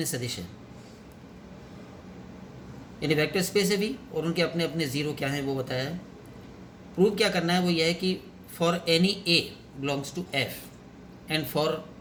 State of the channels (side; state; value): both; identical; correlation 1.00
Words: सदिश है, यानी वेक्टर स्पेस है V और उनके अपने अपने 0 क्या हैं वो बताया है। प्रूव क्या करना है वो यह है कि for any A belongs to F and for